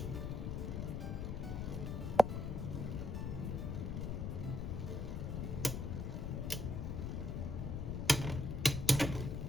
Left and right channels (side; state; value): left; noise; rumble, 2 dB below the sound